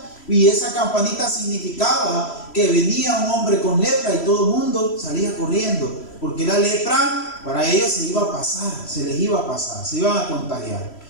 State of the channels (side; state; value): right; late; 3.1 ms